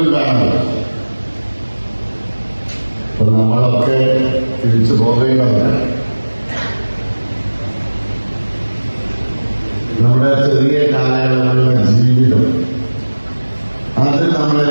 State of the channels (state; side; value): inverted; both; correlation -1.00